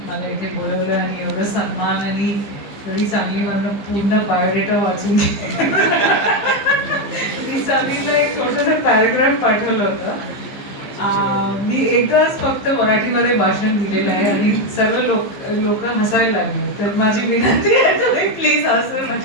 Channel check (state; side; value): late; right; 15 ms